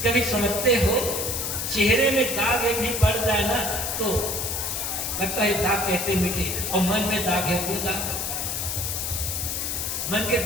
कभी समझते हो चेहरे में दाग एक भी पड़ जाए ना तो लगता है दाग कैसे मिटे, और मन में दाग है वो दाग, मन के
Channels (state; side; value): noise; left; hiss, 2 dB below the sound